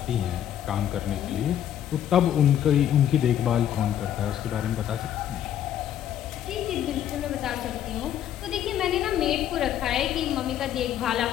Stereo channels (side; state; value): right; quieter; 10.7 dB